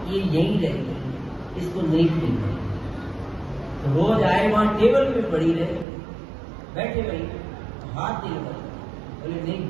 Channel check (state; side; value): drops out; left; at 5.9 s